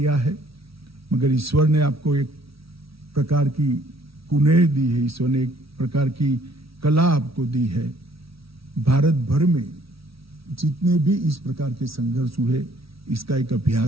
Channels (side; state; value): left; late; 0.76 ms